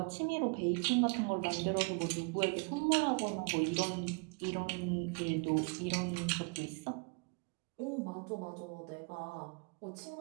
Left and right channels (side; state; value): left; quieter; 34.2 dB